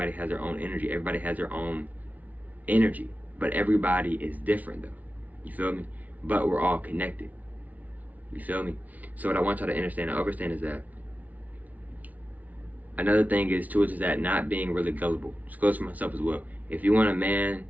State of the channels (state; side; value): late; left; 0.075 ms